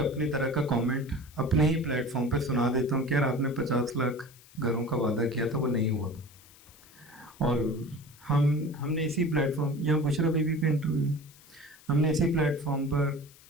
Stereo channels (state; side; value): noise; left; hiss, 24 dB below the sound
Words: अपनी तरह का कमेंट अपने ही प्लेटफॉर्म पे सुना देता हूँ कि यार आपने 50 लाख घरों का वादा किया था, वो नहीं हुआ। और हमने इसी प्लेटफॉर्म, यहाँ बुशरा बीबी का इंटरव्यू, हमने इसी प्लेटफॉर्म पर